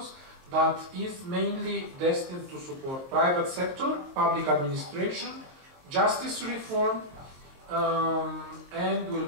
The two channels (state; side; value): late; left; 22 ms